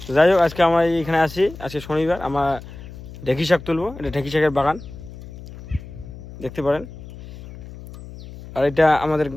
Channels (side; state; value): left; noise; hum, 15 dB below the sound